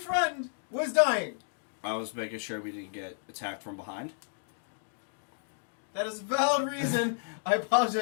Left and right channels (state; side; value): silent; right; digital silence